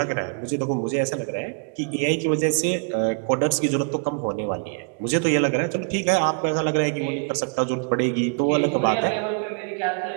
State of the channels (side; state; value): left; quieter; 38.6 dB